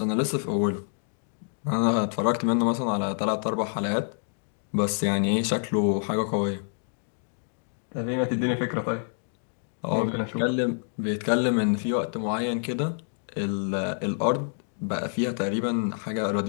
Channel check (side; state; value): right; silent; digital silence